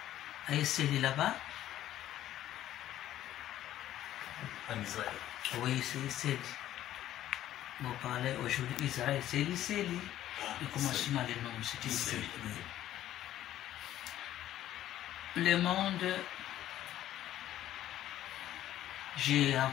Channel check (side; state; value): right; quieter; 12.8 dB